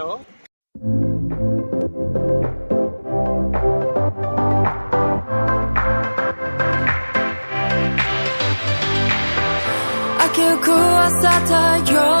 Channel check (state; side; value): inverted; both; correlation -1.00